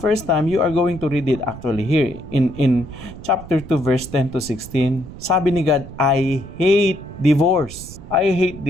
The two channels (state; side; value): noise; right; rumble, 15 dB below the sound